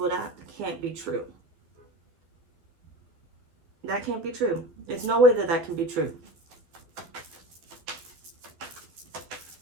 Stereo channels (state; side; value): late; left; 12 ms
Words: that can't be true. That can't be true. There's no way that can be true.